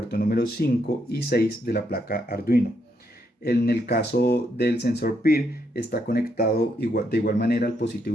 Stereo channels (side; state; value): both; normal; correlation 0.77